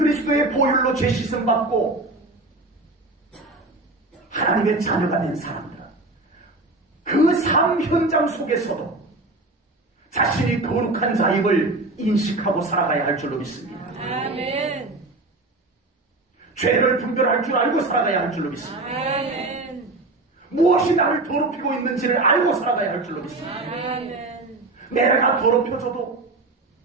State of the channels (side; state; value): left; quieter; 3.0 dB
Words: 보혈로 죄 씻음 받고 하나님의 자녀가 된 사람들은 그 삶 현장 속에서도 자신이 거룩한 자임을 인식하고 살아가야 할 줄로 믿습니다. 죄를 분별할 줄 알고 살아가야 할 줄로 믿습니다. 무엇이 나를 더럽히고 있는지를 알고 살아가야 할 줄로 믿습니다. 내가 더럽혀져도,